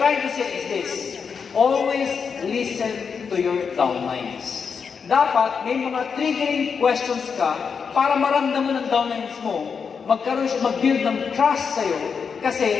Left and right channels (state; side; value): quieter; right; 6.1 dB